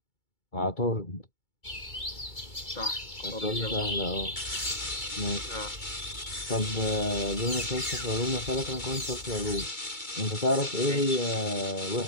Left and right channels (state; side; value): late; right; 2.2 ms